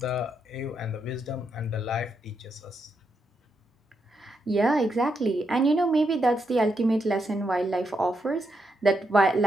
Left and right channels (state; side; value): normal; both; correlation 0.81